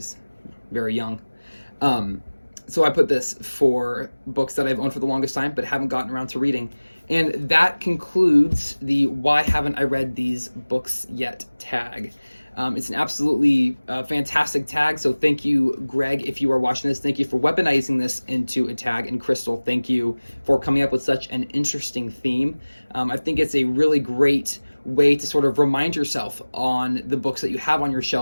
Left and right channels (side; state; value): both; inverted; correlation -1.00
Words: very young. So I put this for books that I've owned for the longest time but haven't gotten around to reading. And that concludes the Why Haven't I Read These Books Yet tag. It's an absolutely fantastic tag, so thank you, Greg, if you are watching this. Thank you for weaponizing this into a tag, and Crystal, thank you for coming up with such an interesting theme. I think it's a really great way to sort of remind yourself on the books that you have on your